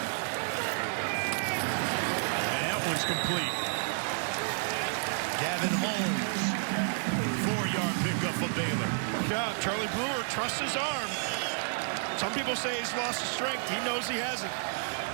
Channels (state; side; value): silent; left; 57 dB below the other